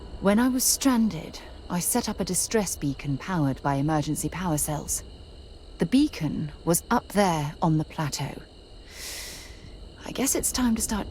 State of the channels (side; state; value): both; identical; correlation 1.00